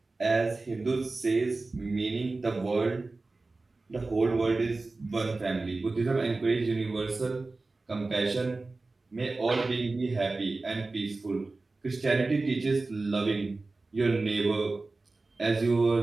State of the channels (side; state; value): left; quieter; 3.4 dB